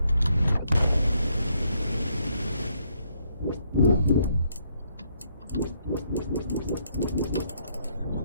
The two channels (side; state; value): both; inverted; correlation -0.73